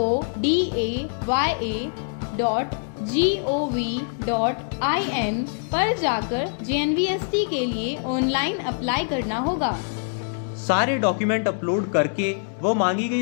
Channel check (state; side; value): silent; right; digital silence